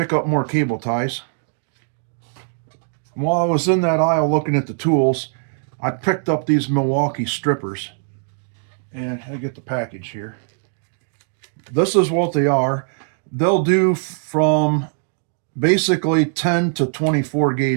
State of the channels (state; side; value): silent; left; 65 dB below the other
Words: up more cable ties. While I was in that aisle looking at the tools, I picked up these Milwaukee strippers. And I get the package here. This is what they are. They'll do from basically 10 to 24